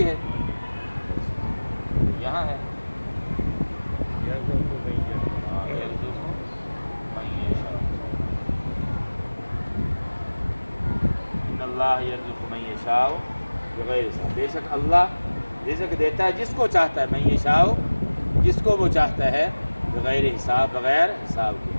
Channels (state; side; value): inverted; both; correlation -1.00